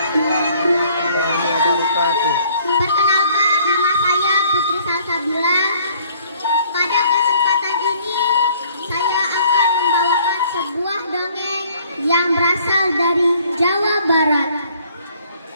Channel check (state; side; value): inverted; both; correlation -0.60